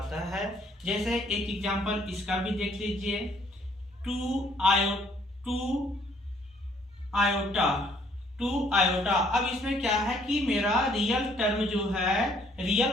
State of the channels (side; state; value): both; normal; correlation 0.64